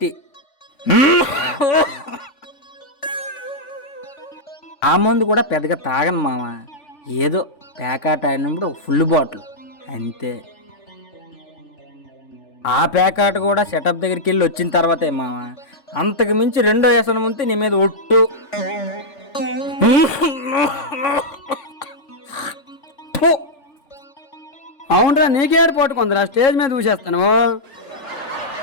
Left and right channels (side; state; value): right; late; 3.5 ms